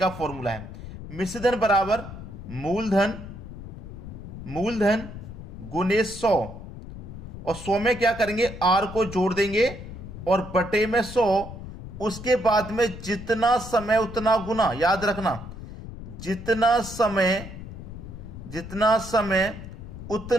फॉर्मूला है। मिश्र धन बराबर मूलधन गुने 100, और 100 में क्या करेंगे, आर को जोड़ देंगे और बटे में 100, उसके बाद में जितना समय उतना गुना। याद रखना, जितना समय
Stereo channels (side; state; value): left; noise; rumble, 11 dB below the sound